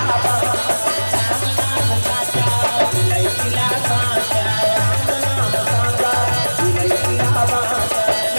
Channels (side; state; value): both; inverted; correlation -1.00